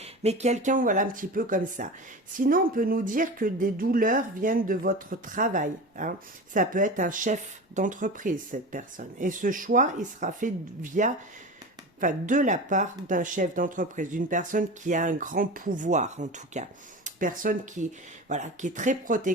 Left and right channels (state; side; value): normal; both; correlation 0.30